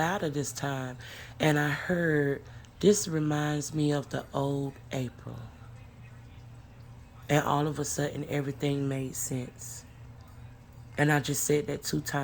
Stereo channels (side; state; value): both; identical; correlation 1.00